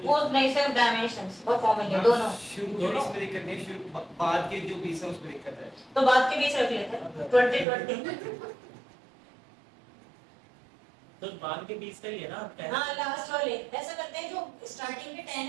वो नहीं, सिर्फ डायमेंशंस और फॉर्मूले दोनों। शुरू के बीच में दिक्कत नहीं, शुरू बाद के जो बीच है उसमें दिक्कत है। तो बाद के बीच रख लेते हैं 20 तो बाद के 20 का ही है ना आपका? हाँ लास्ट वाले ऐसा करते हैं, जो स्टार्टिंग के 10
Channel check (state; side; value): drops out; left; at 7.7 s